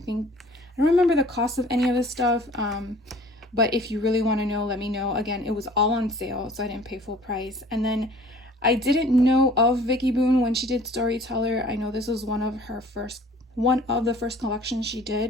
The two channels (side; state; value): both; normal; correlation 0.50